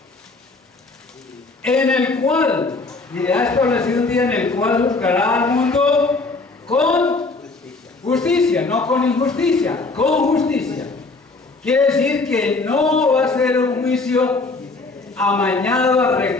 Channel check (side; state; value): right; quieter; 3.6 dB